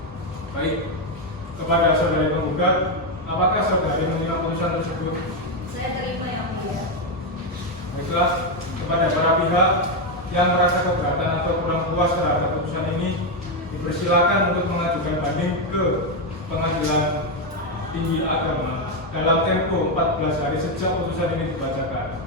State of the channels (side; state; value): both; normal; correlation 0.06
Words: Baik, kepada saudari penggugat, apakah saudari menerima putusan tersebut? Saya terima Yang Mulia. Baiklah, kepada para pihak yang merasa keberatan atau kurang puas terhadap putusan ini, dipersilakan untuk mengajukan banding ke Pengadilan Tinggi Agama dalam tempo 14 hari sejak putusan ini dibacakan.